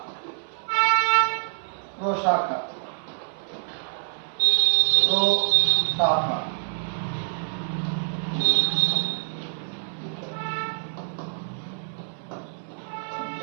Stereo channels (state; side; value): silent; left; 58 dB below the other